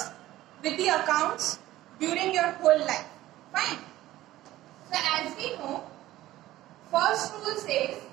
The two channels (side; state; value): left; quieter; 15.4 dB